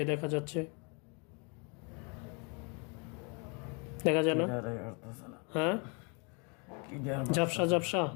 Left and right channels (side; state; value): right; quieter; 33.9 dB